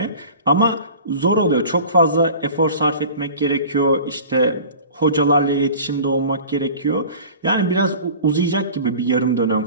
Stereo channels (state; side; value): inverted; both; correlation -0.41